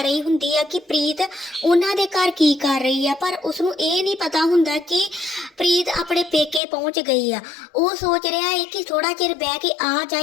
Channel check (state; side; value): drops out; right; at 6.6 s